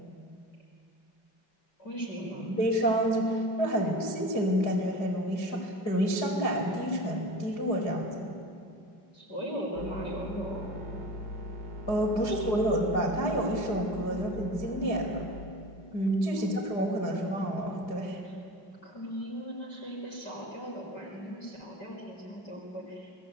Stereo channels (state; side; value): late; right; 4.9 ms